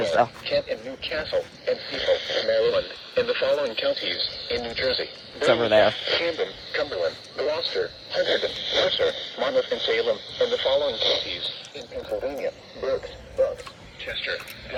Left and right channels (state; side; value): identical; both; correlation 1.00